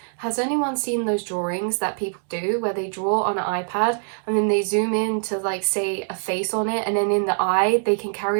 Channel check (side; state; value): left; silent; 63 dB below the other